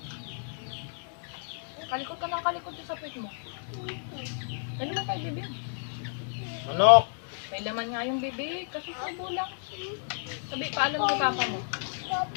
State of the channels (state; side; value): silent; right; digital silence